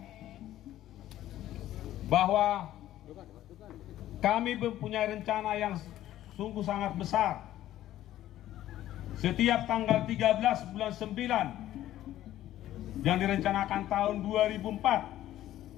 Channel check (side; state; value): right; quieter; 13.4 dB